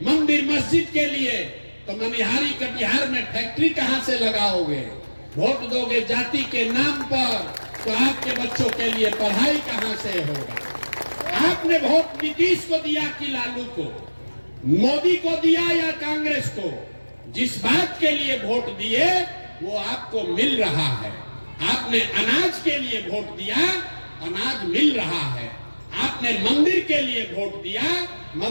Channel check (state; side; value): inverted; both; correlation -1.00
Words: मंदिर मस्जिद के लिए तो मनिहारी कटिहार में फैक्ट्री कहां से लगाओगे? वोट दोगे जाति के नाम पर तो आपके बच्चों के लिए पढ़ाई कहां से होगा? आपने वोट नीतीश को दिया कि लालू को, मोदी को दिया या कांग्रेस को? जिस बात के लिए वोट दिए वो आपको मिल रहा है। आपने अनाज के लिए वोट दिया, अनाज मिल रहा है। आपने मंदिर के लिए वोट दिया,